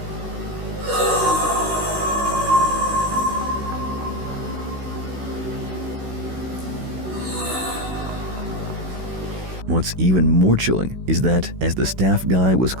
What's even more chilling is that as the staff guy was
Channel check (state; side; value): late; left; 16 ms